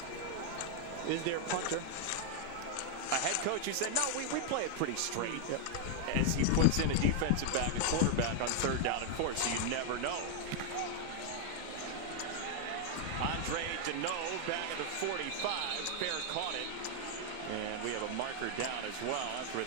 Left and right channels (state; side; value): different; both; correlation 0.00